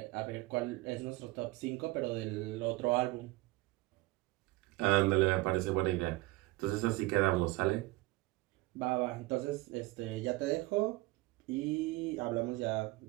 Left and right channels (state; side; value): quieter; left; 20.6 dB